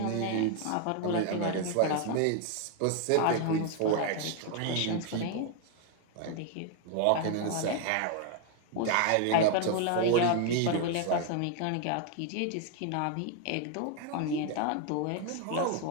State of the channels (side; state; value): both; different; correlation 0.01